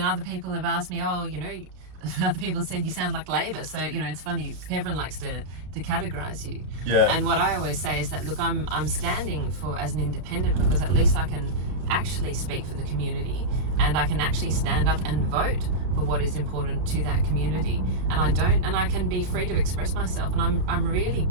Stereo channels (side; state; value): left; late; 33 ms